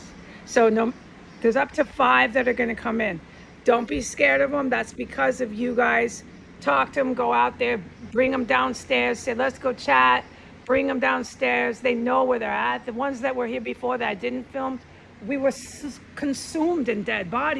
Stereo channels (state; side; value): identical; both; correlation 1.00